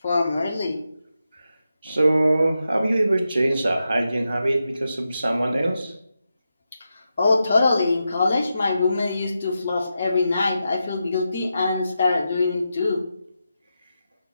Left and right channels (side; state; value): both; inverted; correlation -0.88